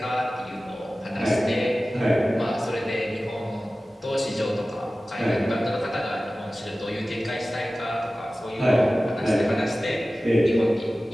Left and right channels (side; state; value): both; normal; correlation 0.96